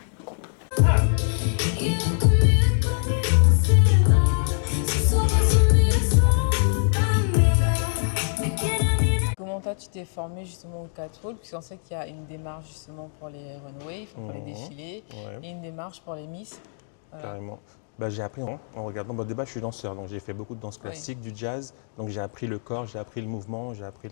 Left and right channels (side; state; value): right; silent; digital silence